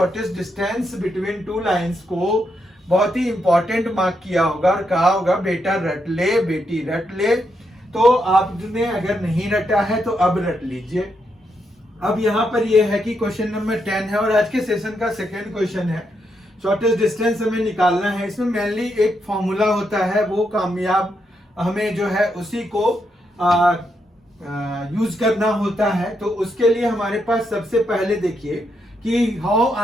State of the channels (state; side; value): normal; both; correlation 0.81